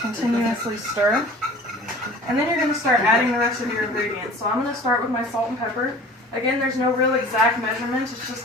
continuously stir. And then you're going to start adding the rest of your ingredients. So I'm going to start with my salt and pepper. Again, there's no real exact measurement, it's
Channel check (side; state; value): both; normal; correlation 0.44